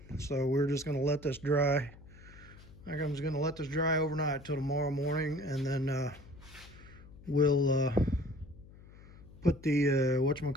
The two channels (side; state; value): left; noise; hum, 20 dB below the sound